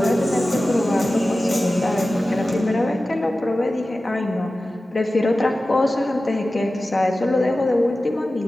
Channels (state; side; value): normal; both; correlation 0.95